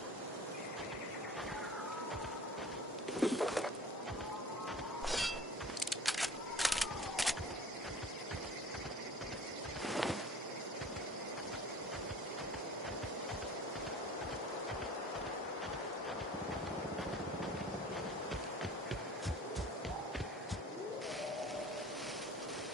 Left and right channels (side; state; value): both; normal; correlation 0.45